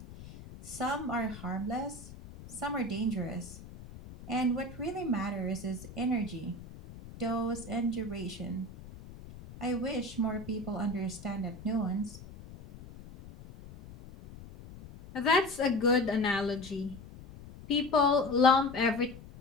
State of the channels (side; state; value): left; noise; rumble, 16 dB below the sound